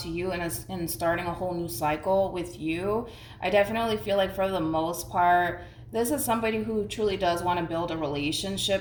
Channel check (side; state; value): both; identical; correlation 1.00